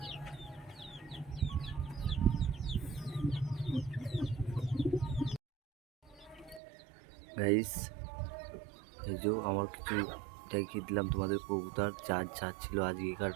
গাইস, এই যে আমার কিছু দেখিয়ে দিলাম তোমাদের কবুতর যা ছিল আজকেকার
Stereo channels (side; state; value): left; drops out; at 6.6 s